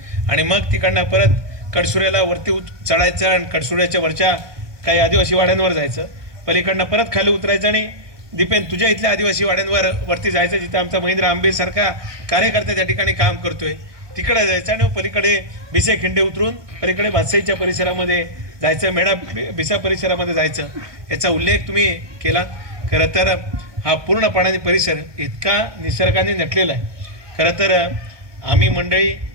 आणि मग तिकडनं परत कडसुऱ्याला वरती चढायचं आणि कडसुऱ्याच्या वरच्या काही आदिवासी वाड्यांवर जायचं, पलीकडनं परत खाली उतरायचं आणि दीपेन तुझ्या इथल्या आदिवासी वाड्यांवर वरती जायचं जिथं आमचा महेंद्र आंबेसारखा कार्यकर्ता त्या ठिकाणी काम करतोय तिकडे जायचं आणि पलीकडे बिसे खिंडे उतरून पलीकडे भातसाईच्या परिसरामध्ये जायचं, मेढा बिसा परिसरामध्ये जायचं. याचा उल्लेख तुम्ही केला. खरं तर हा पूर्णपणाने परिसर इतका निसर्गाने नटलेला आहे. खरं तर आम्ही मंडळी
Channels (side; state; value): left; late; 1.2 ms